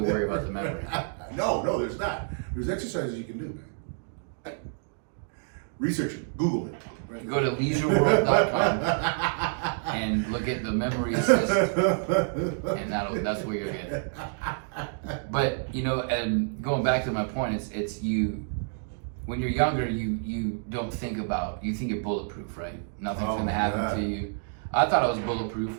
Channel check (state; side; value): silent; left; digital silence